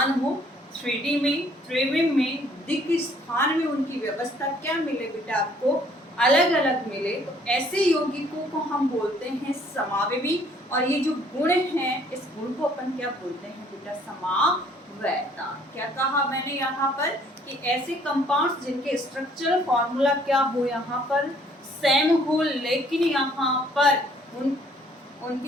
हो, 3D में, त्रिविम में, दिक् स्थान में उनकी व्यवस्था क्या मिले बेटा आपको अलग अलग मिले, तो ऐसे यौगिकों को हम बोलते हैं समावयवी। और ये जो गुण हैं, इस गुण को अपन क्या बोलते हैं बेटा समावयता। क्या कहा मैंने यहाँ पर कि ऐसे कंपाउंड्स जिनके स्ट्रक्चरल फॉर्मूला क्या हो यहाँ पर सेम हो, लेकिन यहाँ पर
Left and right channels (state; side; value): normal; both; correlation 0.61